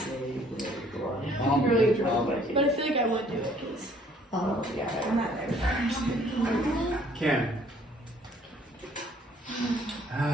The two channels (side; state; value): both; normal; correlation 0.60